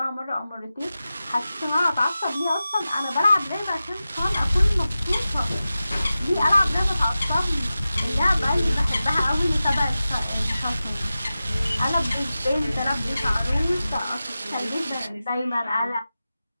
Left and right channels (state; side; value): inverted; both; correlation -0.94